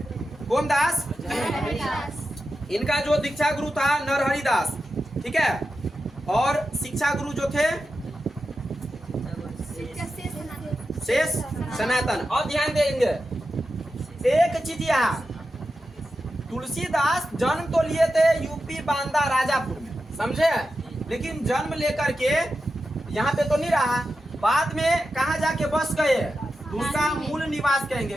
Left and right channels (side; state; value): both; normal; correlation 0.90